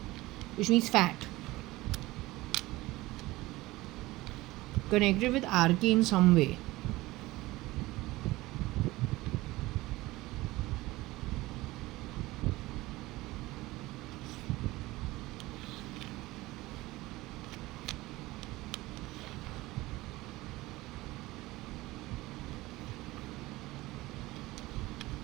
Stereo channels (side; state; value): left; quieter; 19.2 dB